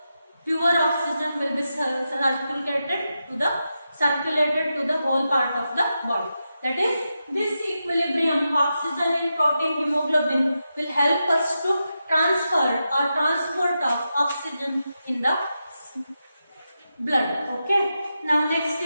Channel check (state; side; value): inverted; both; correlation -0.88